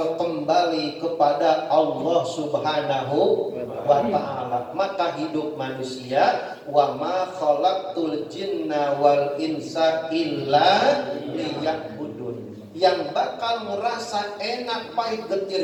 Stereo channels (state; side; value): identical; both; correlation 1.00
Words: kembali kepada Allah Subhanahu wa ta'ala. Maka hidup manusia, wa ma khalaqtul jinna wal insa illa liya'budun, yang bakal merasa enak pahit